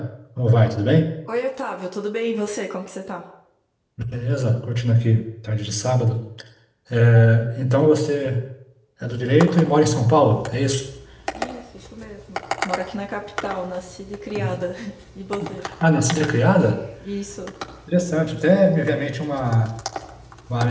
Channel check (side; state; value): both; identical; correlation 1.00